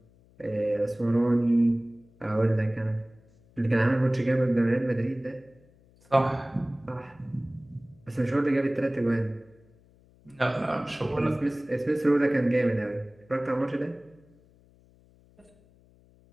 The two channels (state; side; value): noise; left; hum, 29 dB below the sound